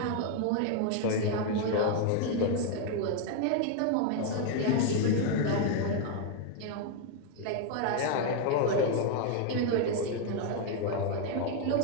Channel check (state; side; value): different; both; correlation 0.00